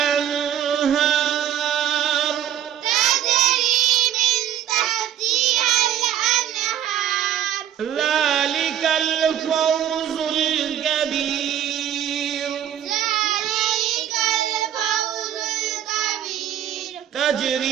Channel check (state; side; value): quieter; left; 10.4 dB